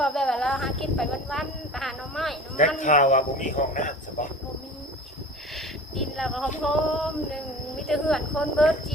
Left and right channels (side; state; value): both; normal; correlation 0.39